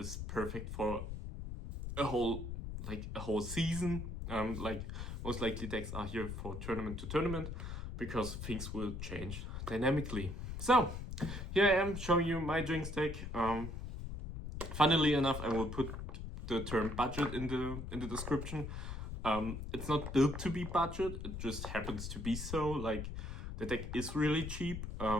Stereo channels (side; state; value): left; noise; rumble, 6 dB below the sound